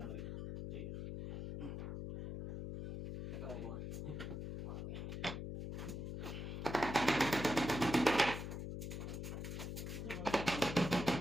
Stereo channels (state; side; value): noise; left; hum, 5 dB below the sound